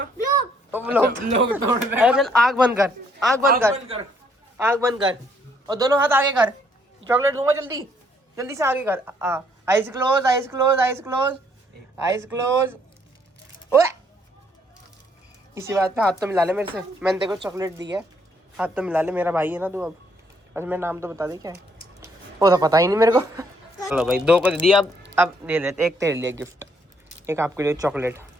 लोग तोड़ दे। चल आग बंद कर, आग बंद कर, आग बंद कर, और दोनों हाथ आगे कर। चॉकलेट दूंगा, जल्दी जल्दी से आगे कर। Eyes close, eyes close, eyes close, eyes close. ओए इसी बात पे हाथ तो मिला ले मेरे से, मैंने तेरे को चॉकलेट दी है, हाथ तो मिला ले, मेरा भाई है ना तू। अब अच्छा मेरा नाम तो बता दे क्या है, वो तो पता ही नहीं मेरे को। चलो भाई 2 को दे दिया, अब दे लेते, एक तेरे लिए गिफ्ट, एक आपके लिए चॉकलेट,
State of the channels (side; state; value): both; normal; correlation 0.68